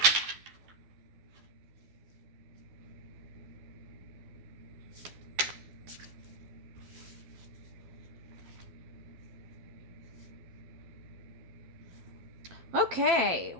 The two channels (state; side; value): late; left; 12 ms